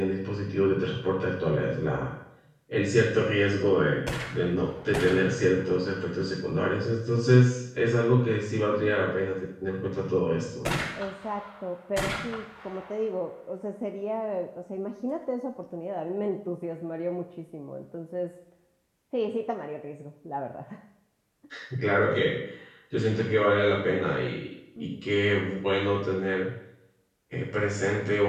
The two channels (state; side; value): identical; both; correlation 1.00